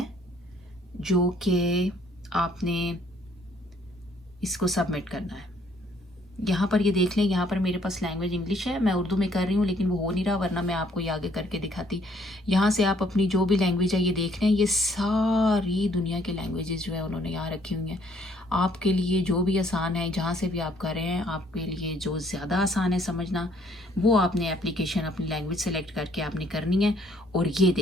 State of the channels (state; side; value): normal; both; correlation 0.64